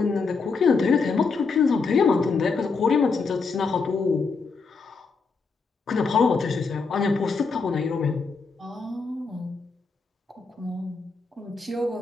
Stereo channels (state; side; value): quieter; right; 4.6 dB